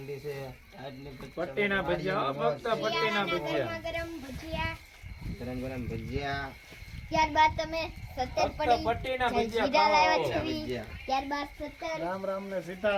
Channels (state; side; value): identical; both; correlation 1.00